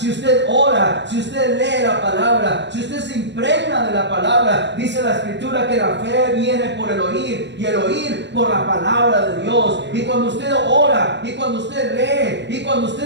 usted ora, si usted lee la palabra, si usted se impregna de la palabra, dice la Escritura que la fe viene por el oír y el oír por la palabra de Dios. Y cuando usted ora, y cuando usted lee, y cuando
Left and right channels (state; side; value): late; left; 0.52 ms